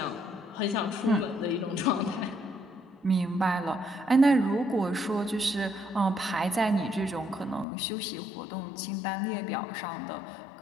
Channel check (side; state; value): right; drops out; at 7.7 s